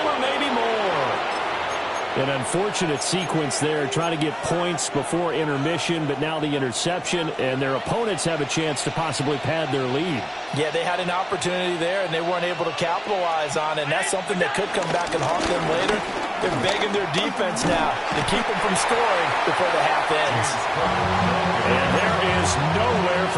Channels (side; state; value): both; identical; correlation 1.00